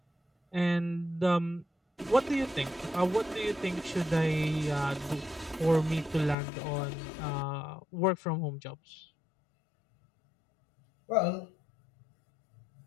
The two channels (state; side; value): drops out; right; at 6.4 s